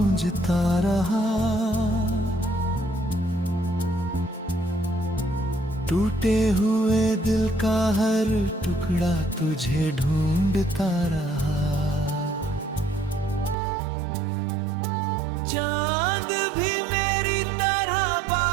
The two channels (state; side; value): drops out; left; at 13.6 s